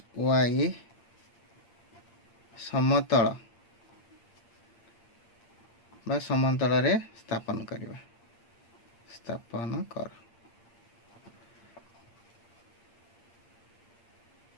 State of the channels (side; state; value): right; late; 8.7 ms